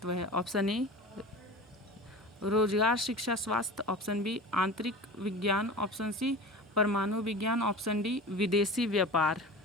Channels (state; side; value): normal; both; correlation 0.34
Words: है? ऑप्शन ए रोजगार, शिक्षा, स्वास्थ्य, ऑप्शन बी आंतरिक विज्ञान, ऑप्शन सी परमाणु विज्ञान, ऑप्शन डी विदेशी व्यापार।